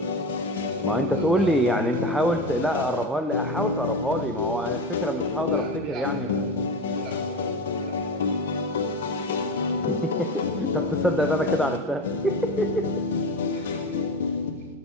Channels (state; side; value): normal; both; correlation 0.23